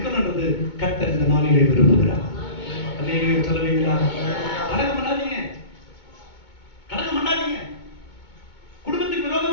கர்த்தர் இந்த நாளிலே விரும்புகிறார். அல்லேலூயா சொல்லுவீங்களா? கலகம் பண்ணாதீங்க, கலகம் பண்ணாதீங்க, குடும்பத்துக்கு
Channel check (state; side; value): late; right; 2.2 ms